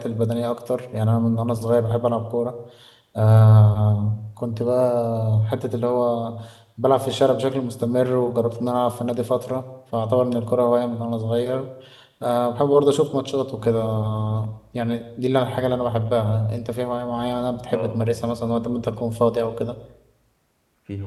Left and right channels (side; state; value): both; identical; correlation 1.00